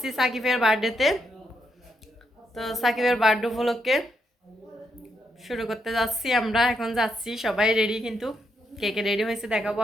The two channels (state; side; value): normal; both; correlation 0.79